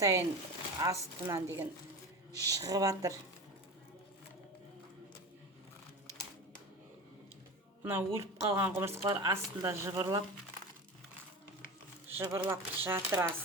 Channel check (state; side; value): normal; both; correlation 0.28